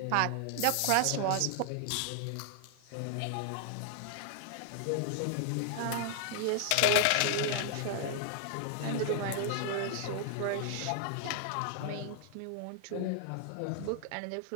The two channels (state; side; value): different; both; correlation 0.00